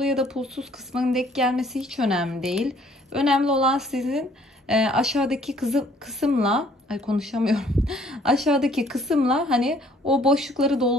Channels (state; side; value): normal; both; correlation 0.60